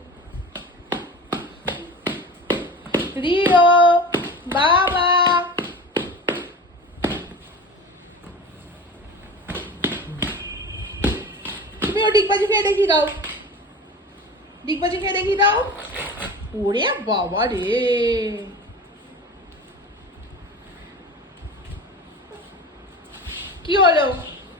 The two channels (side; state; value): both; normal; correlation 0.34